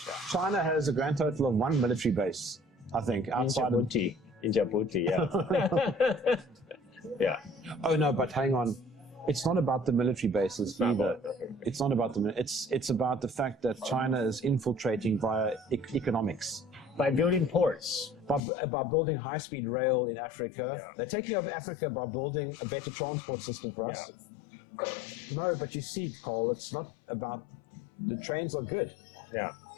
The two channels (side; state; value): right; drops out; at 18.4 s